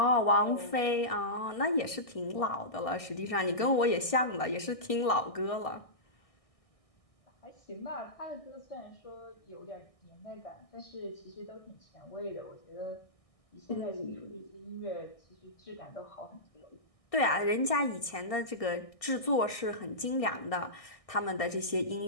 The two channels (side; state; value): right; late; 1.6 ms